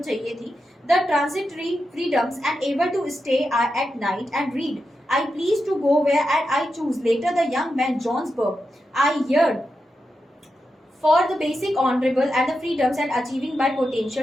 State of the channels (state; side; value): normal; both; correlation 0.88